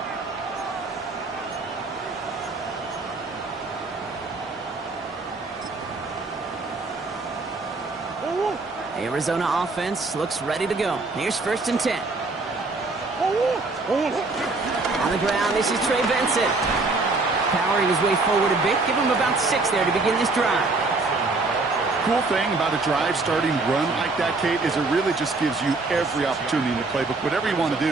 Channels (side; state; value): left; quieter; 3.5 dB